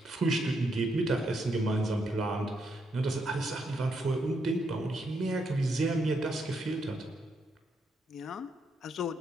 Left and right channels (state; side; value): normal; both; correlation 0.78